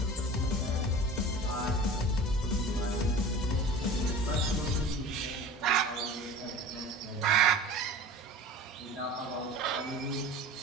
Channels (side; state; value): both; normal; correlation 0.38